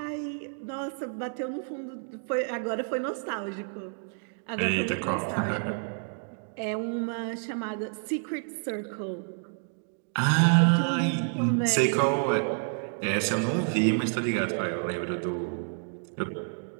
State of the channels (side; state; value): left; silent; 58 dB below the other